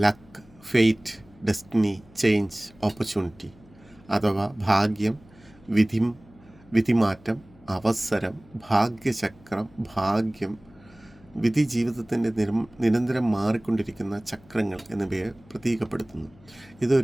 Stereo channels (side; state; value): left; noise; hum, 26 dB below the sound